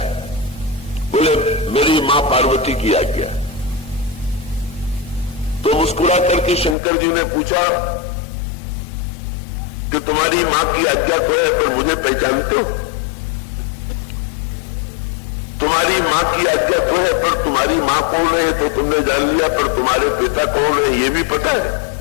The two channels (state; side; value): drops out; right; at 6.8 s